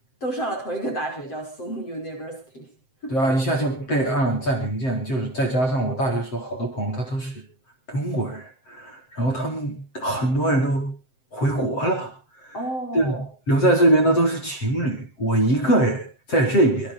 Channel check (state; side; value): late; right; 7.7 ms